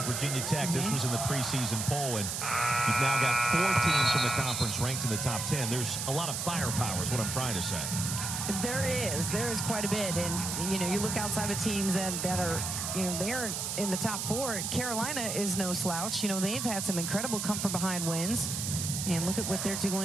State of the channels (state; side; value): noise; right; hiss, 3 dB below the sound